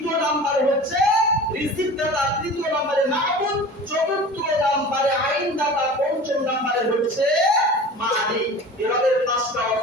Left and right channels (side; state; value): both; normal; correlation 0.38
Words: নাম্বার হচ্ছে রিজিকদাতা, তৃতীয় নম্বরে মাবুদ, চতুর্থ নম্বরে আইনদাতা, পঞ্চম নম্বরে হচ্ছে মালিক। এভাবে 5টা